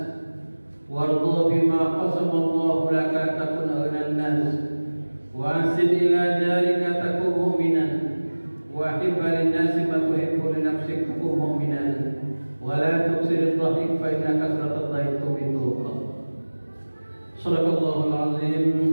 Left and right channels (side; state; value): both; inverted; correlation -1.00